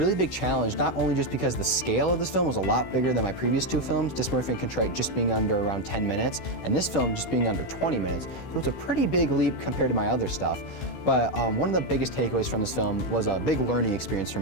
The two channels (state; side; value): late; right; 16 ms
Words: big challenge, not only just because the scale of this film was a lot bigger than my previous 2 films, Dysmorphia and Contrite just being under around 10 minutes, and this film just being under 20 minutes. So it's a pretty big leap compared to my other stuff. But one of the biggest takeaways from this film was a big learning experience for